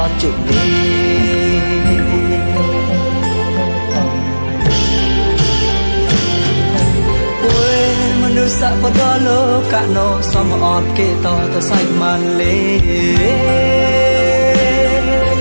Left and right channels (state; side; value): inverted; both; correlation -1.00